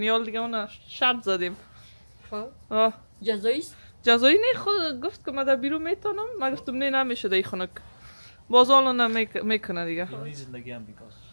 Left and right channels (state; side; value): inverted; both; correlation -1.00